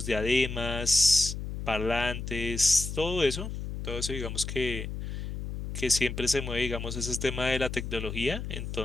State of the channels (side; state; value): left; noise; hum, 6 dB below the sound